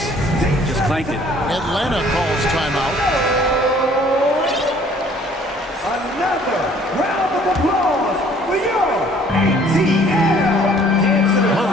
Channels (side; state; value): both; normal; correlation 0.56